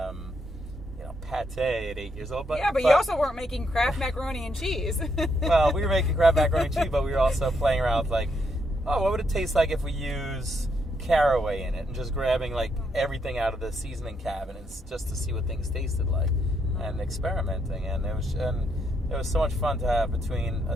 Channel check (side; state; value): both; normal; correlation 0.77